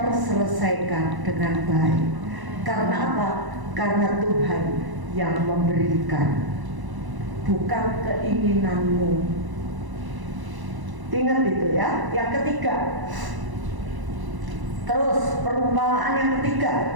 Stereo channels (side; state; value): left; late; 1.0 ms